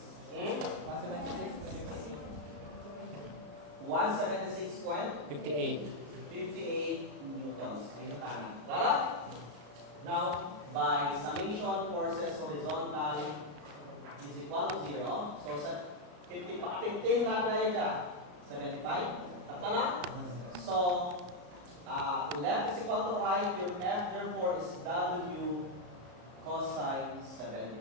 176 point? 58. 58 newtons. Ayun na tama. Clara? Now, by summation forces horizontal is equal to 0. So, sa 50 pa, 15 natin na yun dyan. 75. Tapta na? So, left is equal to right. Your F, therefore, is W cosine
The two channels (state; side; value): late; left; 34 ms